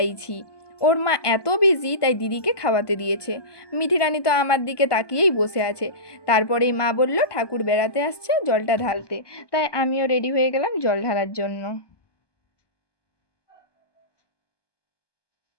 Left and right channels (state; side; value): late; right; 1.2 ms